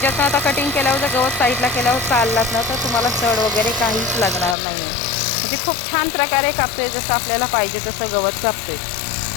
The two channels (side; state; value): right; drops out; at 4.5 s